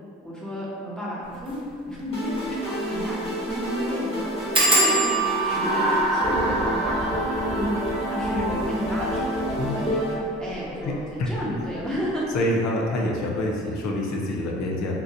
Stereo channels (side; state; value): both; normal; correlation 0.38